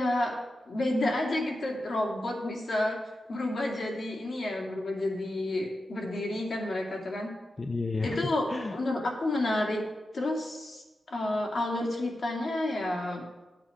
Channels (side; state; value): both; normal; correlation 0.90